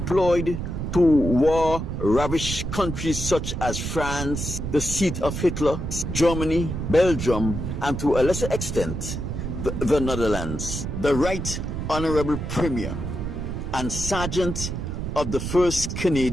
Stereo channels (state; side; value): noise; right; rumble, 4 dB below the sound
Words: to war-ravaged countries such as France, the seat of Hitler, Germany, Belgium, and to a lesser extent, the Netherlands. The Right Honorable Premier and Sergeant of the 1st